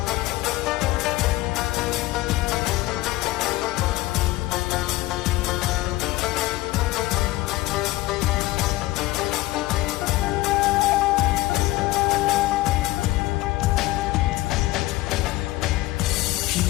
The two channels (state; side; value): quieter; right; 18.4 dB